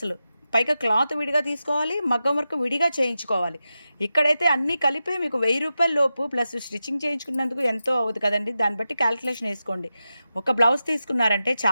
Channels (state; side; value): inverted; both; correlation -0.91